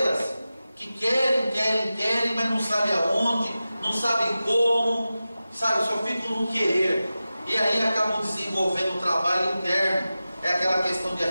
que querem, mas não sabem aonde, não sabem como, sabe, só ficam no querer, e aí acabam desenvolvendo um trabalho interno. É aquela questão de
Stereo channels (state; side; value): inverted; both; correlation -0.94